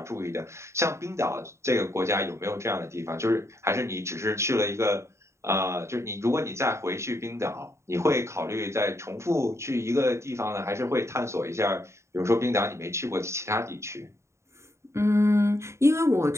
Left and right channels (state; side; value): late; left; 0.14 ms